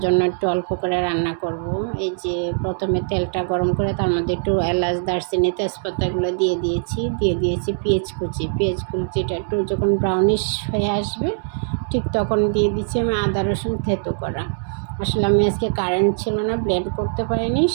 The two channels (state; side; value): silent; left; 64 dB below the other